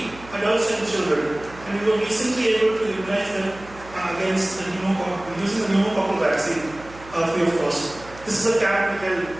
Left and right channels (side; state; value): right; noise; hum, 19 dB below the sound